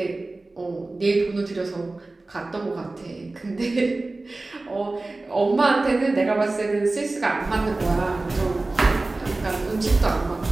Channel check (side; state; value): left; quieter; 3.1 dB